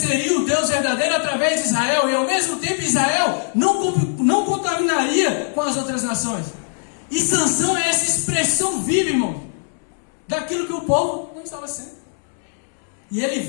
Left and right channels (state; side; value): silent; right; 65 dB below the other